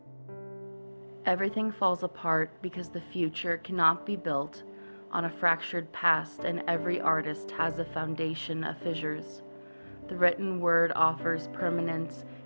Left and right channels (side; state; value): both; inverted; correlation -1.00